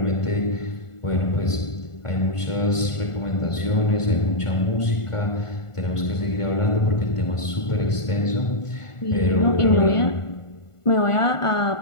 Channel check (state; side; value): late; right; 1.5 ms